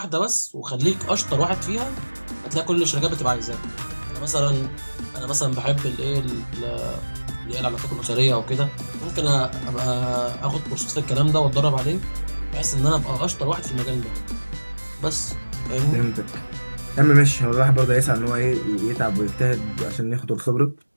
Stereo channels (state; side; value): inverted; both; correlation -1.00